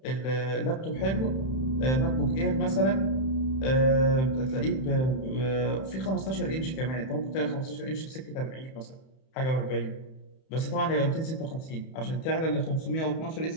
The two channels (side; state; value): right; late; 31 ms